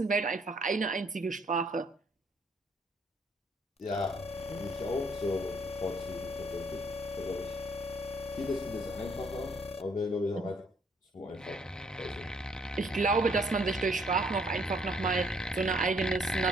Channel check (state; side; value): normal; both; correlation 0.66